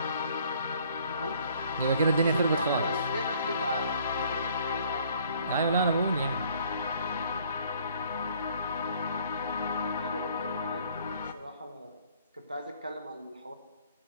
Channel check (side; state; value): both; inverted; correlation -0.59